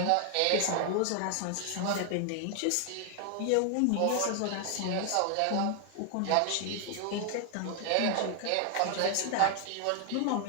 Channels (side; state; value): both; different; correlation 0.00